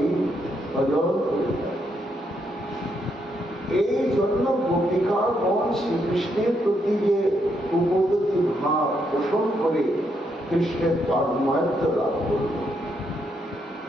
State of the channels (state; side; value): normal; both; correlation 0.77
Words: ভজন করে থাকি। এই জন্য গোপিকাগণ শ্রীকৃষ্ণের প্রতি যে উপগতি ভাব পোষণ করে কৃষ্ণের তন্ময়ত্ব লাভ করল,